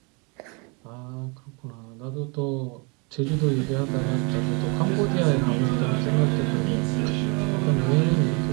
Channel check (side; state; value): left; quieter; 32.2 dB